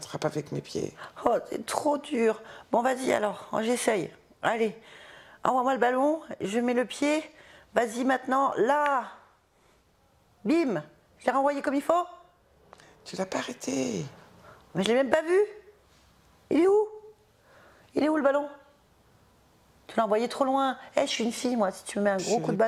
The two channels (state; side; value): identical; both; correlation 1.00